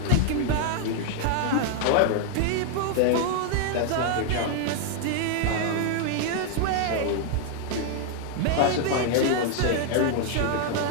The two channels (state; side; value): different; both; correlation 0.00